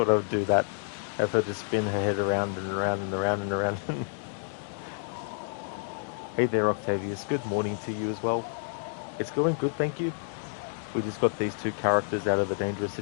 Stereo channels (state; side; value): silent; right; digital silence